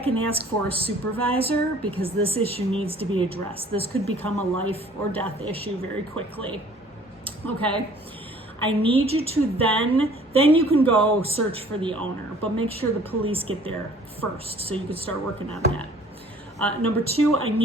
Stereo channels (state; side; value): normal; both; correlation 0.54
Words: and ask for a supervisor, because this issue needs to be addressed. This could become a life or death issue very quickly. Okay? I need you to then you can go search for the owner, but make sure the police get there first so you can start working on that. Number 2, I